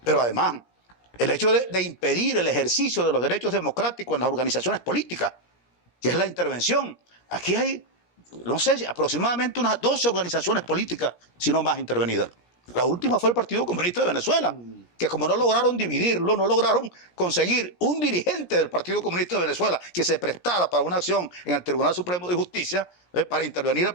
Pero además, el hecho de impedir el ejercicio de los derechos democráticos en las organizaciones políticas, que es la intervención. Aquí hay, no sé, aproximadamente unas 12 organizaciones políticas, si no más, intervenidas. La última fue el Partido Comunista de Venezuela, que como no lograron dividirlo, no lograron conseguir un dirigente del Partido Comunista de Venezuela que se prestara para una acción en el Tribunal Supremo de Justicia para intervenir al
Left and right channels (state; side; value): late; right; 17 ms